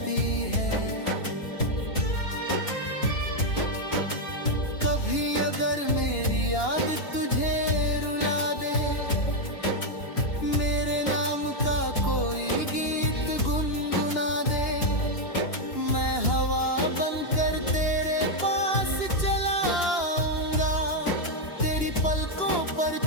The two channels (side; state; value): right; late; 2.9 ms